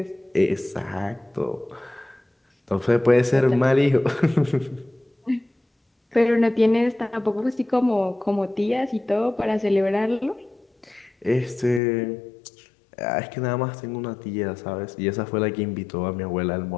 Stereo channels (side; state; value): right; drops out; at 11.8 s